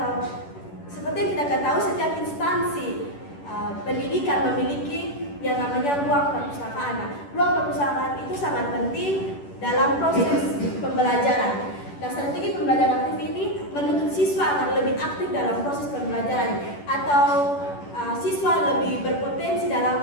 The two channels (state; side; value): late; right; 10 ms